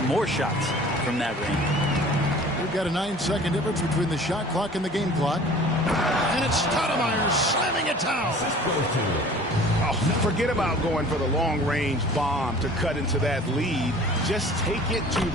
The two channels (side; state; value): both; normal; correlation 0.46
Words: more shots from that range. We've got a 9-second difference between the shot clock and the game clock. And it's Stoudemire slamming it down. Oh, forget about going for the long-range bomb to cut into that lead. Just take it to